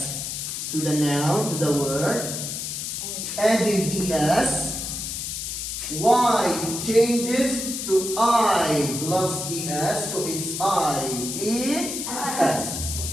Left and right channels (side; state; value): left; noise; hiss, 4 dB below the sound